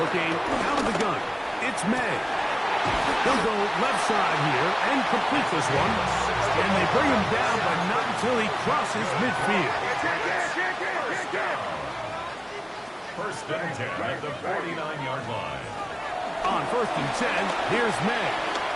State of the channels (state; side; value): identical; both; correlation 1.00